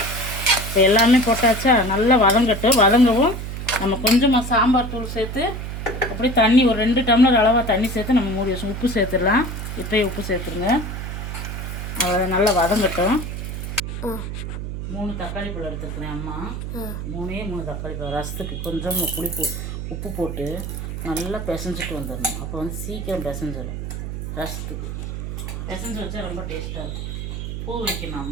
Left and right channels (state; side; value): noise; right; hum, 6 dB below the sound